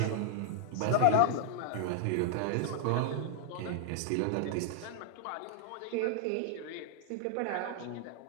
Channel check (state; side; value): different; both; correlation 0.00